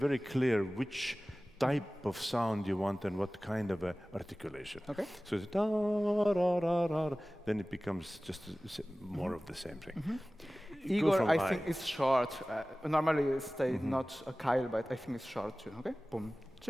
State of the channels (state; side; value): normal; both; correlation 0.98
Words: clear which type of sound you want and what kind of a articulation. Okay. So it's da ra ra ra, then it becomes just more of the same thing. Go Igor, from I think it's short. Normally it stays Mm-hmm. not a Kyle, but I think it's short too. Okay. Boom.